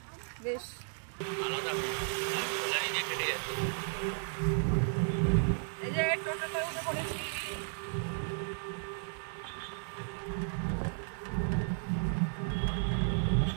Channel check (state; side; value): silent; left; digital silence